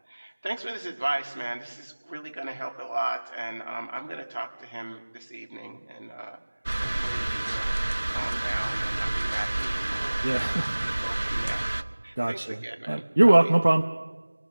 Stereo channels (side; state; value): both; inverted; correlation -1.00